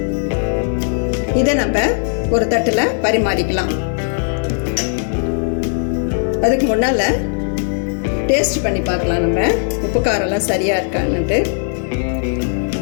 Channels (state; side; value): silent; right; digital silence